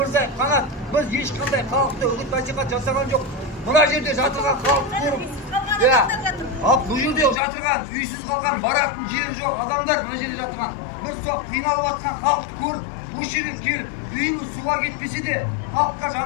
Қанат, біз ешқандай халықты үгіт насихат жасаған жоқ. Мына жерде жатырған халықты көріп, бұл жерде жатырған, үйсіз қалған, баратын жері жоқ адамдар мына жерде жатырған. Біз сол қиналып жатқан халықты көріп, осы жерге келіп, үйіміз суға кетпесе де, халыққа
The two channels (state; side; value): drops out; right; at 7.4 s